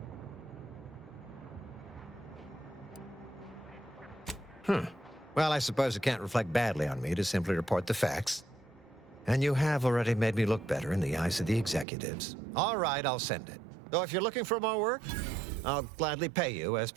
Well, I suppose it can't reflect badly on me to simply report the facts. And you have already made me look better in the eyes of the executives. All right, I'll send it. Though if you're looking for more work, I'll gladly pay you as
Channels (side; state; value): left; drops out; at 11.9 s